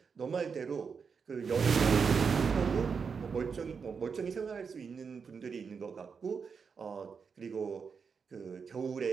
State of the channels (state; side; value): quieter; left; 5.8 dB